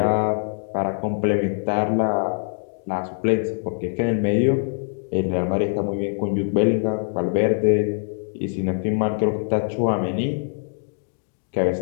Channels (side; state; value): right; silent; digital silence